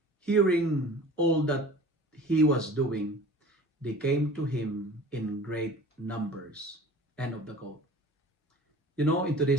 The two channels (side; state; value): both; normal; correlation 0.43